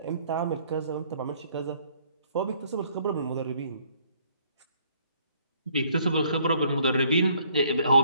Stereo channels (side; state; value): both; inverted; correlation -0.64